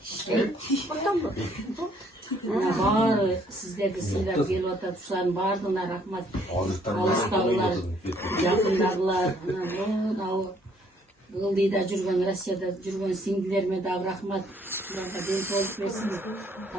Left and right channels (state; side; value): normal; both; correlation 0.64